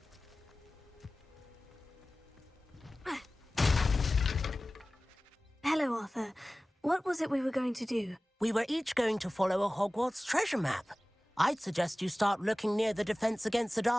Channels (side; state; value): both; normal; correlation 0.97